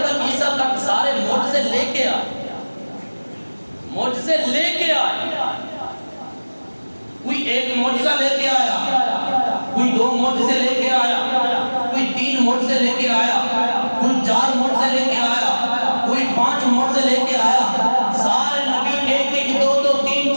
کر عیسیٰ تک سارے معجزے لے کے آئے، معجزے لے کے آئے۔ کوئی ایک معجزہ لے کے آیا، کوئی دو معجزے لے کے آیا، کوئی تین معجزے لے کے آیا، کوئی چار معجزے لے کے آیا، کوئی پانچ معجزے لے کے آیا۔ سارے نبی ایک ایک دو دو تین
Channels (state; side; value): inverted; both; correlation -1.00